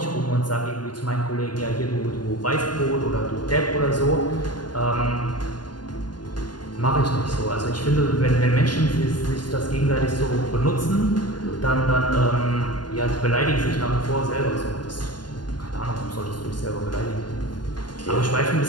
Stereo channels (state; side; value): late; right; 0.71 ms